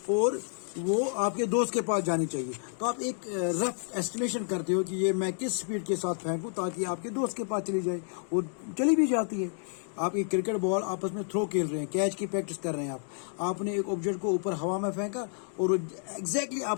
और वो आपके दोस्त के पास जानी चाहिए, तो आप एक रफ एस्टिमेशन करते हो कि ये मैं किस स्पीड के साथ फेंकूं ताकि आपके दोस्त के पास चली जाए, और चली भी जाती है। आप एक क्रिकेट बॉल आपस में थ्रो खेल रहे हैं, कैच की प्रैक्टिस कर रहे हैं, आपने एक ऑब्जेक्ट को ऊपर हवा में फेंका और एग्जैक्टली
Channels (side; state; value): right; silent; 58 dB below the other